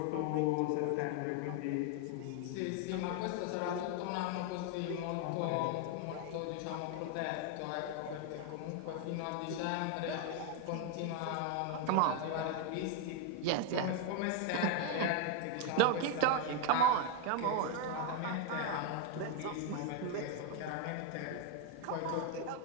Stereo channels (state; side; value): different; both; correlation 0.01